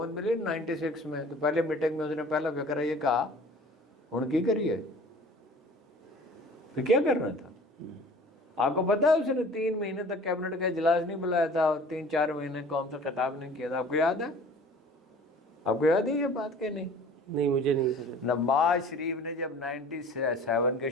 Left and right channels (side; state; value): both; normal; correlation 0.46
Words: ملی 96 میں تو پہلے میٹنگ میں اس نے پہلا فکر یہ کہا ہوں کی کریے, پھر کیا کرنا تھا. آپ کو پتا ہے اس نے 3 مہینے تک کیبنٹ کا اجلاس نہیں بلایا تھا اور 3-4 مہینے قوم سے خطاب نہیں کیا تھا. آپ کو یاد ہے؟ آپ کو یاد ہے یہ بات کہ نہیں؟ نہیں مجھے نہیں. نواز شریف نے جب 97 کے